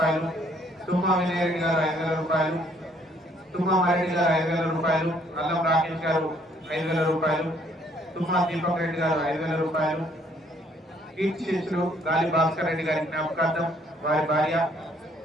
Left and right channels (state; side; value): normal; both; correlation 0.64